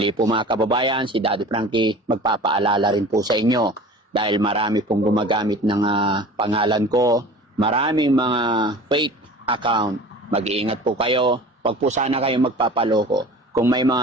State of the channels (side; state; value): both; normal; correlation 0.40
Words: po mga kababayan, si Daddy Frankie magpapaalala rin po sa inyo dahil marami pong gumagamit ng pangalan ko, maraming mga fake account. Mag-iingat po kayo, wag po sana kayo magpapaloko. Kung may